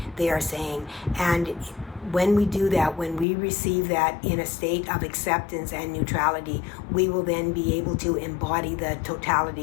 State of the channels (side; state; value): right; drops out; at 3.2 s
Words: they are saying. And when we do that, when we receive that in a state of acceptance and neutrality, we will then be able to embody the